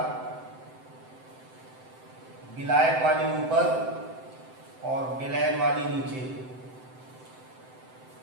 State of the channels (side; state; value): left; late; 7.8 ms